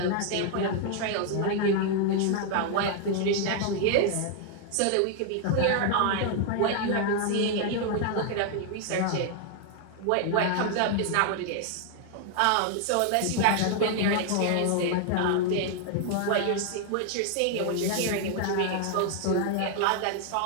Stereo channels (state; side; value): different; both; correlation 0.00